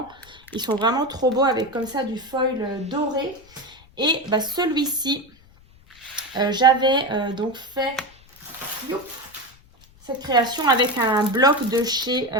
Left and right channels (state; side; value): noise; left; rumble, 27 dB below the sound